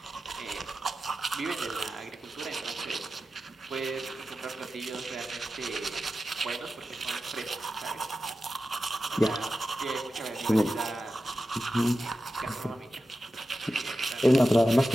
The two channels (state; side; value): normal; both; correlation 0.93